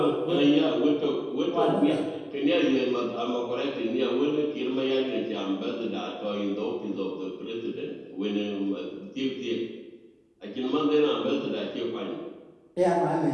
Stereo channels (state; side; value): identical; both; correlation 1.00